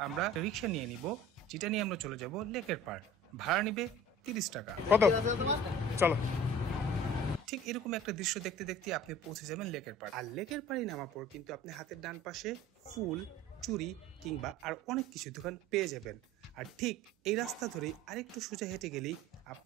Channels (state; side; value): normal; both; correlation 0.44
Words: আমরা রিক্সা নিয়ে নিব, যেটা নিয়ে আমরা চলে যাব লেকের পাড়। ভাড়া নিবে 30 টাকা। কত? চলো। ঠিক এরকম একটা দৃশ্য দেখতে দেখতে আপনি পৌঁছে যাবেন লেকের পাড়। আর লেকের পাড়ে নামার পর কিন্তু আপনি হাতের ডান পাশে ফুল, চুড়ি কিংবা আর অনেক কিছু দোকান পেয়ে যাবেন। আর ঠিক এই রাস্তা ধরেই আরেকটু সোজা হেঁটে গেলেই